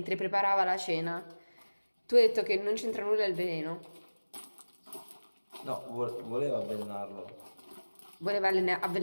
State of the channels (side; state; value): both; inverted; correlation -1.00